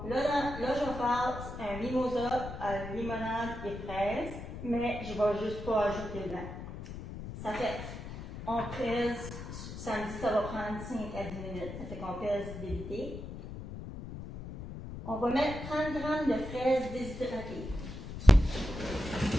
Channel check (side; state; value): left; noise; rumble, 9 dB below the sound